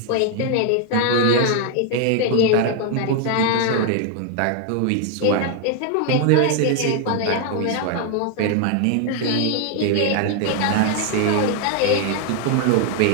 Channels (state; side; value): different; both; correlation 0.01